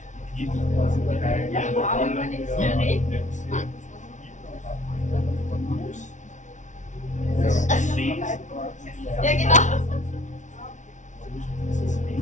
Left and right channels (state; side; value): late; right; 0.36 ms